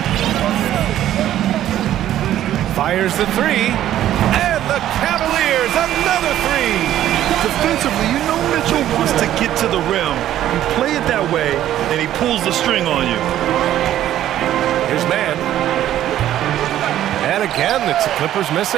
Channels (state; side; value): quieter; left; 12.3 dB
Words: Fires the three. And the Cavaliers, another 3. Defensively, you know Mitchell wants to get to the rim. You play it that way, and he pulls the string on you. Here's man. And again, it's the Clippers